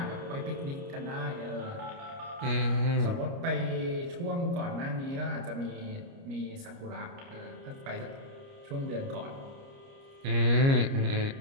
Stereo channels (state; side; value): late; left; 29 ms